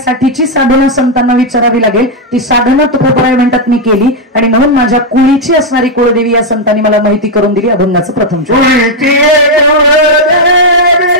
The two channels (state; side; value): normal; both; correlation 0.01